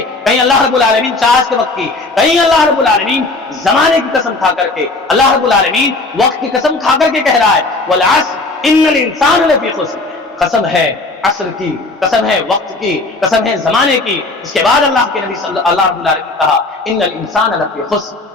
کہیں اللہ رب العالمین چاش کے وقت کی، کہیں اللہ رب العالمین زمانے کی قسم کھا کر کے، اللہ رب العالمین وقت کی قسم کھا کر کے کہہ رہا ہے والعصر ان الانسان لفی خسر. قسم ہے عصر کی، قسم ہے وقت کی، قسم ہے زمانے کی. اس کے بعد اللہ کے نبی صلی اللہ علیہ وسلم نے کہا ان الانسان لفی خسر،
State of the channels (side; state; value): right; quieter; 3.2 dB